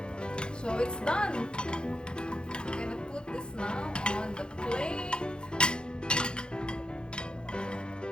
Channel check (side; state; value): right; late; 0.049 ms